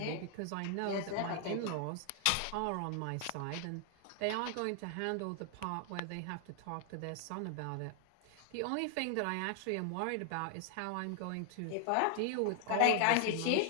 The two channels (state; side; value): different; both; correlation 0.00